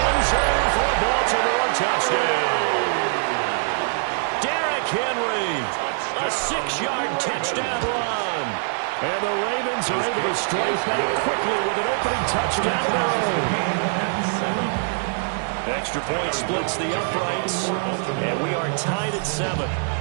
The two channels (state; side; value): silent; left; digital silence